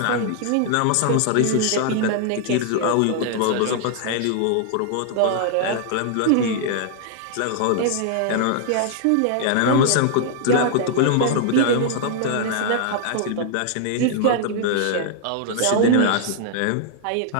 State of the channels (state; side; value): different; both; correlation -0.01